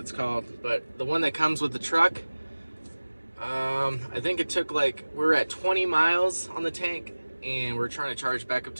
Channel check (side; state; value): both; inverted; correlation -1.00